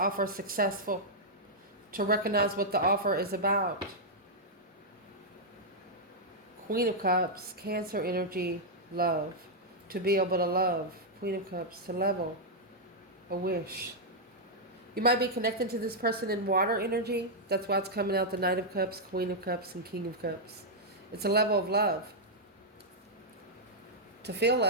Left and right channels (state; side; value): normal; both; correlation -0.06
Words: successful. To recognize what the offer is about. Queen of Cups, Cancer energy, love. To be able to love. Queen of Cups, to level. A wish. You might be connecting to this person in water energy. That's why it's coming out the Knight of Cups, Queen of Cups, and King of Cups. It's a level of love. To feel